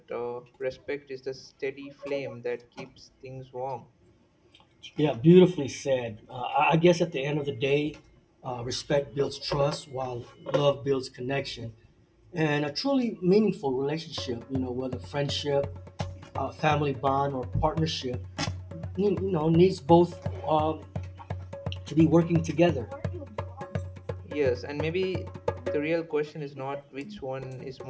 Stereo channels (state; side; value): identical; both; correlation 1.00